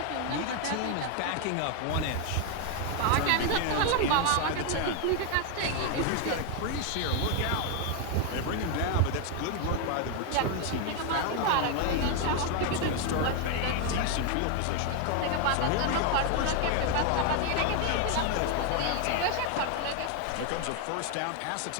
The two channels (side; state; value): both; different; correlation 0.01